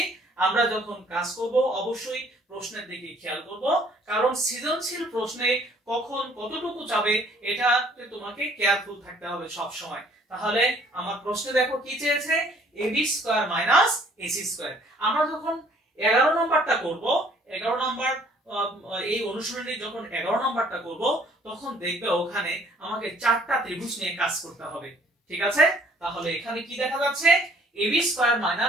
আমরা যখন কাজ করব অবশ্যই প্রশ্নের দিকে খেয়াল করব, কারণ সৃজনশীল প্রশ্নে কখন কতটুকু যাবে এটাতে তোমাকে কেয়ারফুল থাকতে হবে সব সময়। তাহলে আমার প্রশ্নে দেখো কি চেয়েছে, ab square minus ac square. আমরা যখন 11 নাম্বারটা করব, 11 নাম্বার এই অনুশীলনী যখন 11 নাম্বারটা করব, তখন দেখবে ওখানে আমাকে 4টা ত্রিভুজ নিয়ে কাজ করতে হবে, ঠিক আছে? তাহলে এখানে কি দেখা যাচ্ছে, ab square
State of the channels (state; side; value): normal; both; correlation 0.58